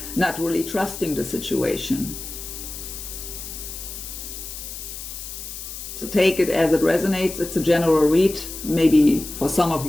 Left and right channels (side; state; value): left; noise; hiss, 10 dB below the sound